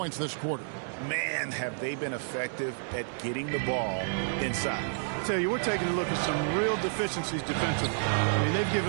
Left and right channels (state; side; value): silent; left; digital silence